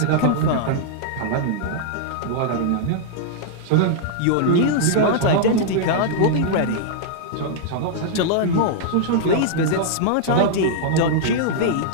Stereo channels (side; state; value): both; different; correlation -0.01